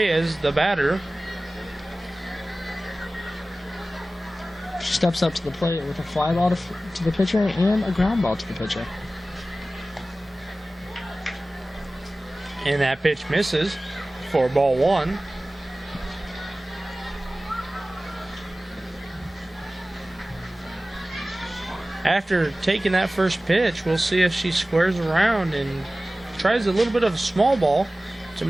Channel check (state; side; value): normal; both; correlation 0.97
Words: the batter. Steps up to the plate with a fly ball to the pitcher and a ground ball to the pitcher. And that pitch misses for ball 1. After taking that first pitch, we'll see if she squares around and tries a little bit of a small ball to